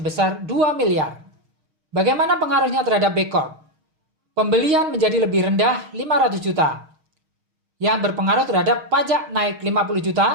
2 miliar. Bagaimana pengaruhnya terhadap B Corp? Pembelian menjadi lebih rendah 500 juta. Yang berpengaruh terhadap pajak naik 50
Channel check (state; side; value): late; left; 6.4 ms